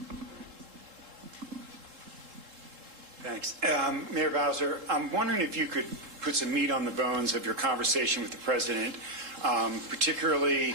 Thanks. Mayor Bowser, I'm wondering if you could put some meat on the bones of your conversation with the president, particularly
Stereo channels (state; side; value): late; left; 3.7 ms